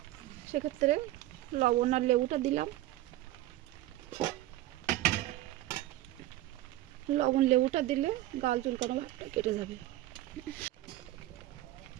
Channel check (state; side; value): quieter; left; 15.5 dB